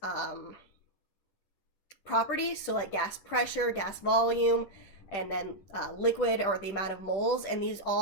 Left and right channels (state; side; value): late; right; 10 ms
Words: properties, so like gas pressure, gas volume, and then liquid, or the amount of moles, and these